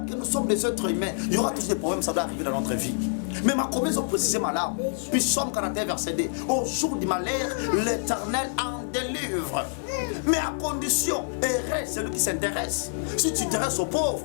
que nous sommes des êtres humains, il y aura tous des problèmes, ça va arriver dans notre vie. Mais ma promesse, ont précisé ma larme. Puis Somme 41, verset D. Au jour du malheur, l'Éternel en délivre. Mais à condition, errer celui qui s'intéresse. Si tu t'intéresses aux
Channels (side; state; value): right; silent; 60 dB below the other